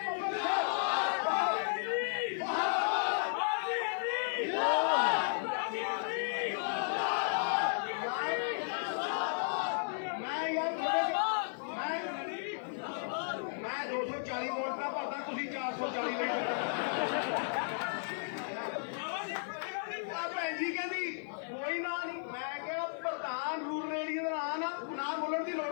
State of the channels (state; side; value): silent; right; 55 dB below the other